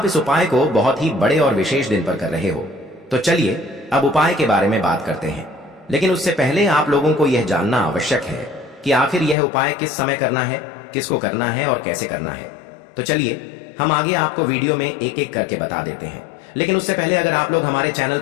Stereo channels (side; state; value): right; drops out; at 9.3 s